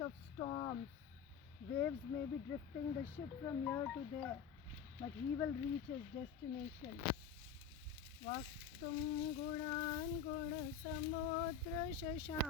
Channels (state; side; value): quieter; right; 7.0 dB